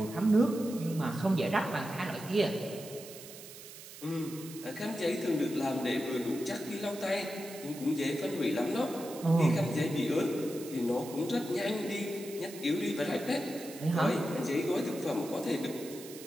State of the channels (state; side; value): noise; right; hiss, 15 dB below the sound